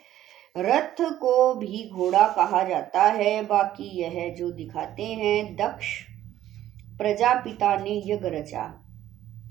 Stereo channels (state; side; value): quieter; left; 12.7 dB